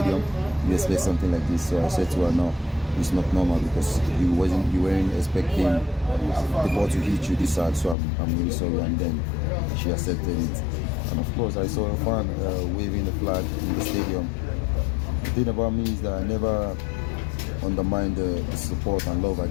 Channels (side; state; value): right; drops out; at 8.0 s